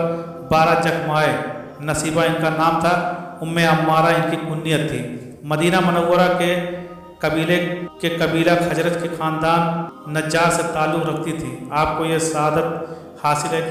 12 जख्म आए। नसीबा इनका नाम था, उम्मे अम्मारा इनकी कुन्नियत थी। मदीना मनव्वरा के कबीला खजरत के ख़ानदान नज्जार से ताल्लुक़ रखती थी। आपको यह सआदत हासिल है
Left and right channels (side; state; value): both; identical; correlation 1.00